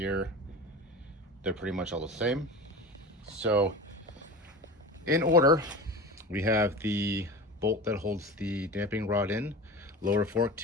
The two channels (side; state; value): both; normal; correlation 0.32